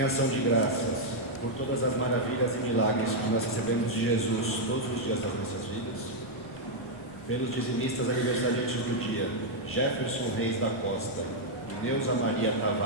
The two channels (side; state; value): left; noise; rumble, 26 dB below the sound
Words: ação de graças por todas as maravilhas e milagres que nós recebemos de Jesus todos os dias das nossas vidas, pelos dizimistas aniversariantes do dia, Jefferson Reis da Costa e Neuza Maria